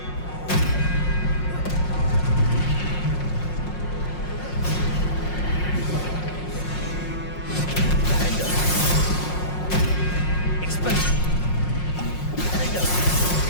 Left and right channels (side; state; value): right; late; 5.5 ms